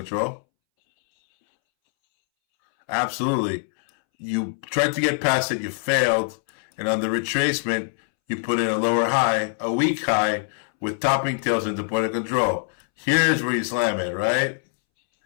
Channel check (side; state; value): right; silent; 63 dB below the other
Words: Absolutely. You tried to get past it, you failed, and on the retracement, you put in a lower high, a weak high, with topping tails into point of control. Here's where you slam it, right?